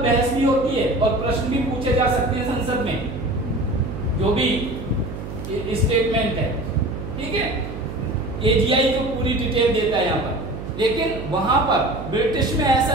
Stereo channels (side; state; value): right; noise; hum, 9 dB below the sound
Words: बहस भी होती है और प्रश्न भी पूछे जा सकते हैं संसद में, जो भी स्टेटमेंट है, ठीक है। एजीआई जो पूरी डिटेल देता है यहाँ पर, लेकिन वहां पर ब्रिटिश में ऐसा